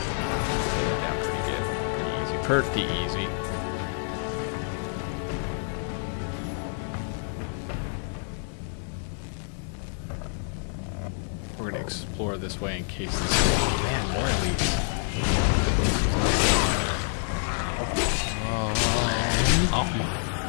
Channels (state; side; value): silent; right; 58 dB below the other